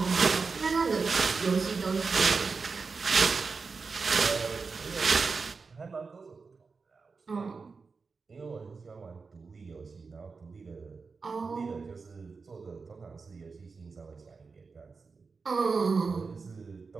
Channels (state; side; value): quieter; left; 4.7 dB